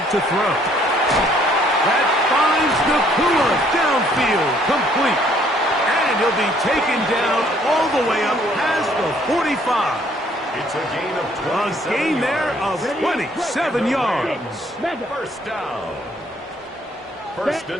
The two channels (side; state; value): both; normal; correlation 0.63